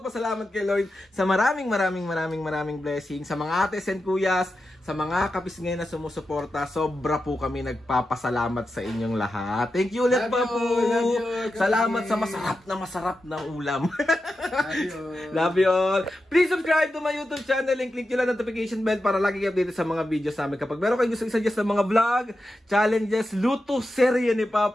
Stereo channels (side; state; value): both; normal; correlation 0.90